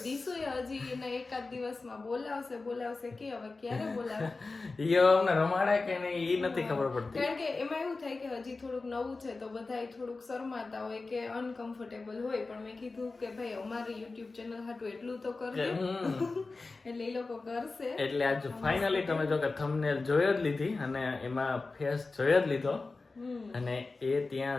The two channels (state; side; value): quieter; right; 3.7 dB